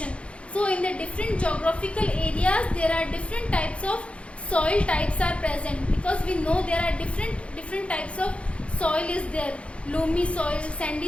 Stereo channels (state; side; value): late; right; 0.061 ms